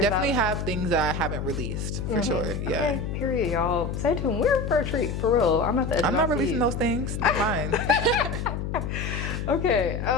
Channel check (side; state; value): left; noise; hum, 4 dB below the sound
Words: have things that I haven't released for sure. Yeah. Okay, period, y'all. Stay tuned. We're for a treat, for real. I'm at the edge I'm of not my releasing seat. those things. They're mine. Okay.